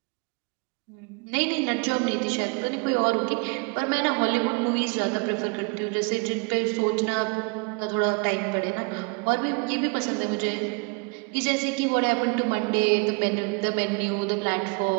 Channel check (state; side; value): quieter; left; 32.0 dB